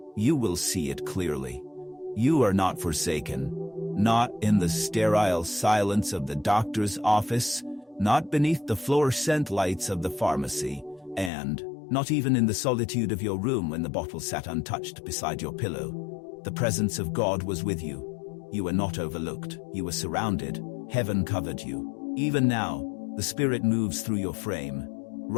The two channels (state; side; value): drops out; right; at 11.3 s